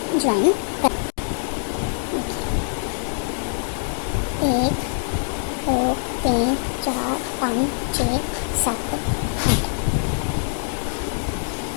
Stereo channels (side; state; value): right; silent; digital silence